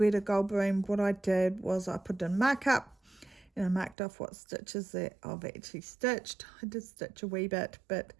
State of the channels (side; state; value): left; drops out; at 4.0 s